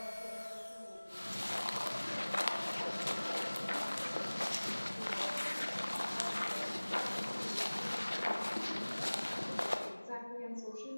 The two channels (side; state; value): both; inverted; correlation -1.00